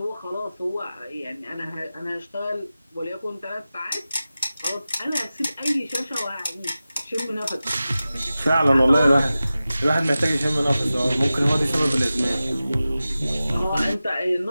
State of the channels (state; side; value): inverted; both; correlation -0.95